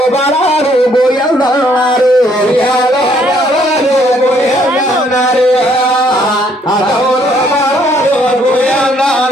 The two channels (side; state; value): both; normal; correlation 0.66